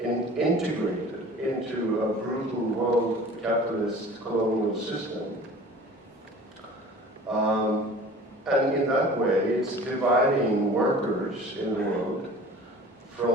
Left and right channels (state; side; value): normal; both; correlation 0.44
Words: into a brutal world capitalist colonial system. And in that way, it's dividing workers in the world